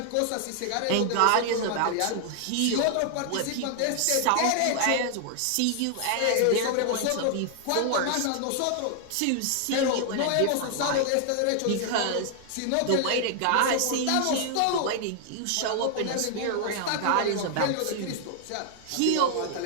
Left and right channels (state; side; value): different; both; correlation 0.00